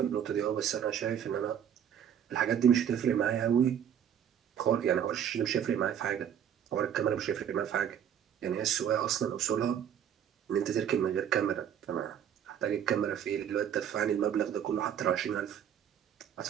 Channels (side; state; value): left; quieter; 9.1 dB